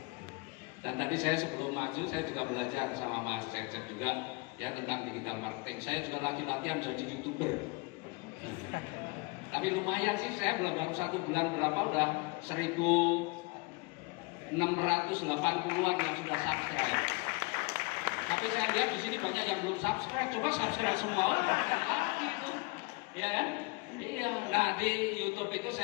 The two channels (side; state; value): right; quieter; 27.8 dB